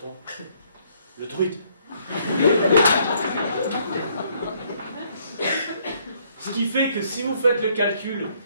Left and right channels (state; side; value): inverted; both; correlation -0.67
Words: le druide. Ce qui fait que si vous faites le calcul,